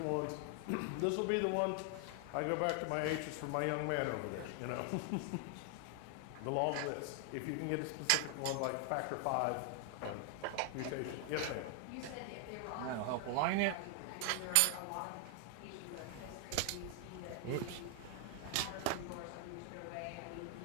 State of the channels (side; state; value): both; different; correlation 0.00